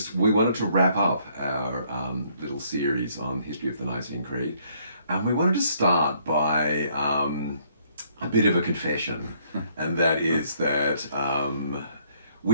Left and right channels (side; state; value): both; inverted; correlation -0.67